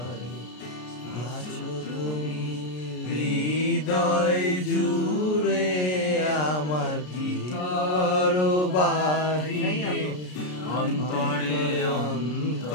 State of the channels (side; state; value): right; late; 33 ms